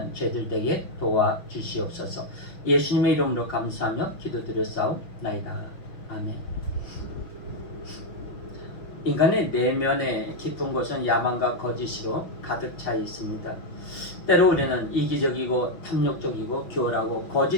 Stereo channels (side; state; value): right; late; 6.0 ms